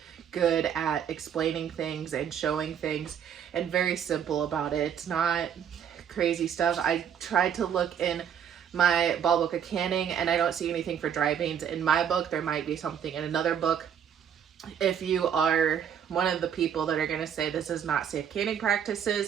good at explaining things and showing things and very simple about it. It's not crazy stuff. I tried to look in my ball book of canning and I don't see anything for dry beans. In my book, there might be something in another book. If you are one of the people that are going to say this is not safe canning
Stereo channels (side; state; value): left; quieter; 8.4 dB